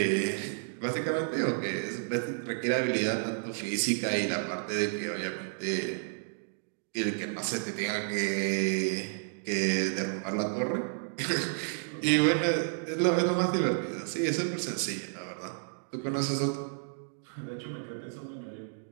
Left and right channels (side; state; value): left; silent; digital silence